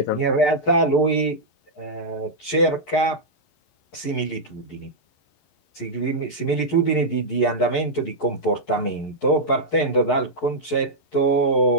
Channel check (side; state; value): right; late; 11 ms